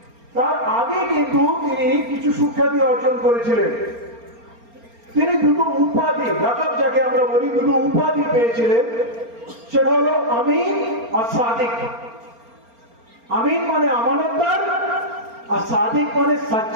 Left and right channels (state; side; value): late; left; 4.3 ms